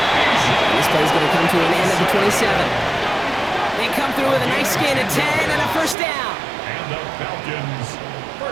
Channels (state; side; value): drops out; left; at 6.0 s